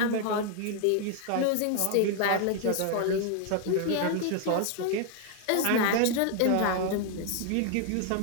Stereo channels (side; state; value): both; different; correlation 0.01